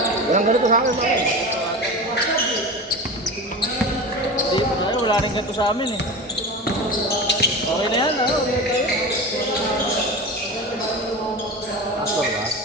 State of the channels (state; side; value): normal; both; correlation 0.28